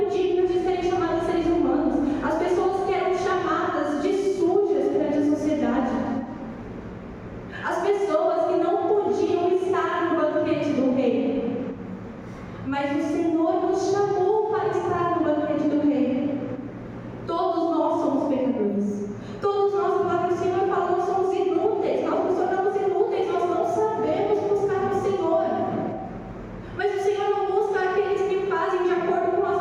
dignas de serem chamadas seres humanos, as pessoas que eram chamadas de sujas perante a sociedade, as pessoas que não podiam estar no banquete do rei. Mas o Senhor nos chamou para estar no banquete do rei. Todos nós somos pecadores. Todos nós, a palavra do Senhor fala, nós somos inúteis. Nós nos tornamos inúteis, nós não sabemos buscar o Senhor. Mas o Senhor não busca aqueles que fazem de acordo com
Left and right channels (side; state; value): both; identical; correlation 1.00